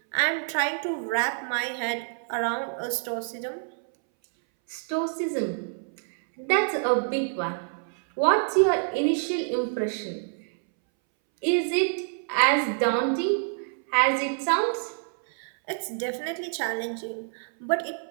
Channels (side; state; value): left; silent; 60 dB below the other